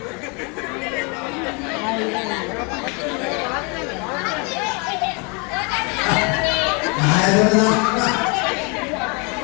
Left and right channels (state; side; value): quieter; right; 32.2 dB